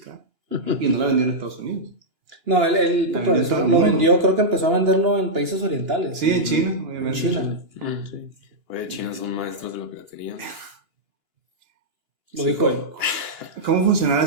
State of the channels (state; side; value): late; left; 2.9 ms